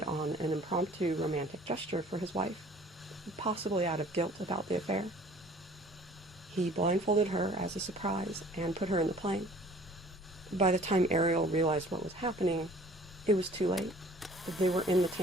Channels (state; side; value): normal; both; correlation 0.51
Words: on an impromptu romantic gesture for his wife, possibly out of guilt about the affair. He blindfolded her as a surprise and put her in the plane. By the time Ariel realized what was happening, it was too late. They were in the